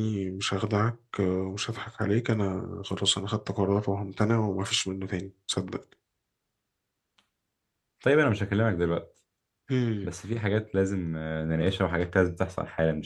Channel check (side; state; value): both; identical; correlation 1.00